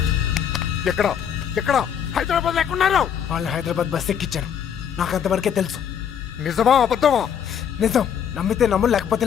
ఎక్కడ ఎక్కడ హైదరాబాద్ ఎక్కడున్నారు? వాళ్ళు హైదరాబాద్ బస్ ఎక్కించారు. నాకు అంతవరకే తెలుసు. నిజమా అబద్ధమా? నిజం. నమ్మితే నమ్ము, లేకపోతే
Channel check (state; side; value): quieter; right; 8.4 dB